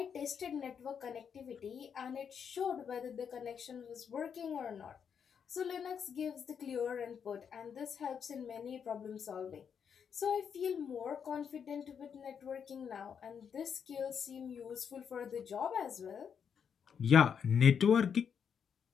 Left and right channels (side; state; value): right; quieter; 7.3 dB